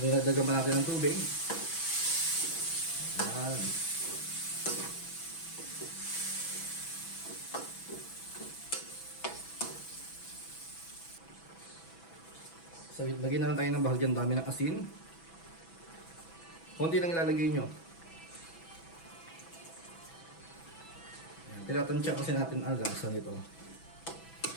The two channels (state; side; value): late; right; 6.1 ms